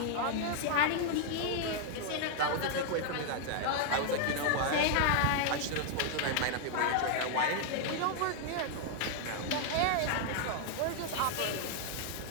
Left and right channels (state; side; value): different; both; correlation 0.00